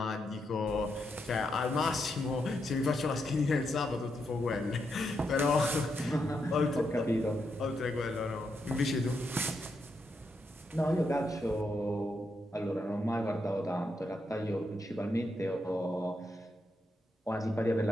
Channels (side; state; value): both; normal; correlation 0.82